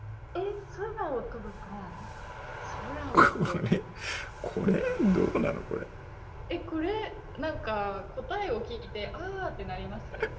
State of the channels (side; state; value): both; identical; correlation 1.00